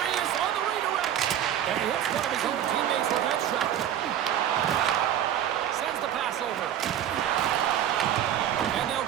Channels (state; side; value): quieter; left; 10.6 dB